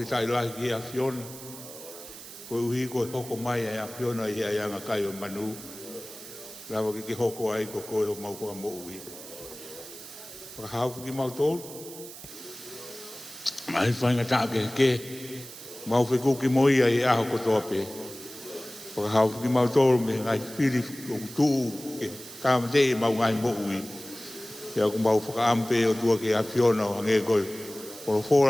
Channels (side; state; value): right; noise; hiss, 14 dB below the sound